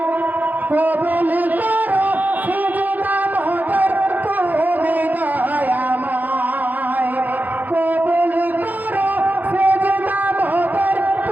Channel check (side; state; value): left; late; 0.083 ms